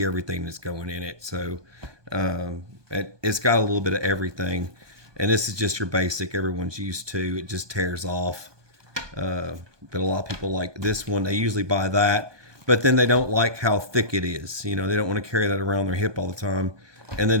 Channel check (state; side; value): late; left; 1.2 ms